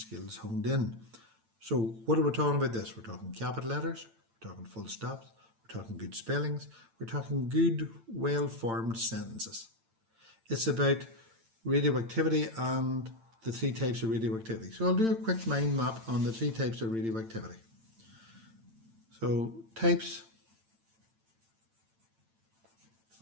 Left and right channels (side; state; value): left; late; 8.9 ms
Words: honed in. So, what are we talking about this? We're talking capital letters, we're talking full stops, we're talking good spellings, we're talking good, well-formed sentences. It's about radioactivity and the 3 types of radioactivity. So I'll do a quick mind map on the 3 types of radioactivity. So types